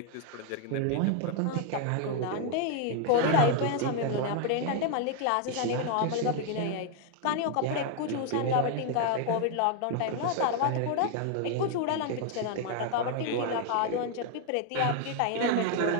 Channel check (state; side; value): different; both; correlation 0.00